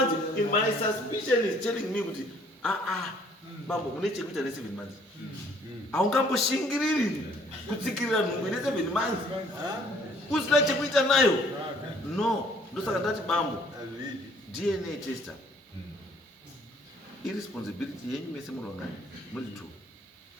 in my suspicion is telling me kuti bambo une chekuita ne 7 months haungamboshingiriri kutsikirira nhumbu ine 7 months usina chekuita nayo no ndosaka ndati bambo DNA tester irresponsibility yenyu mese munongani muri 2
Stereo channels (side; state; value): both; normal; correlation 0.60